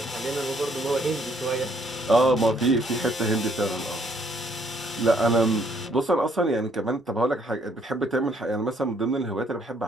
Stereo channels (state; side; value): normal; both; correlation 0.67